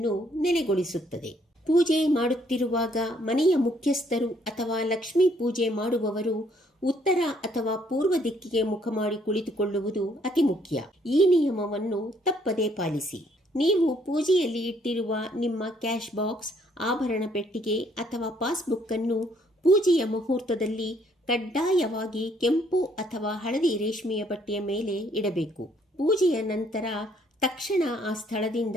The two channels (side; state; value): both; normal; correlation 0.66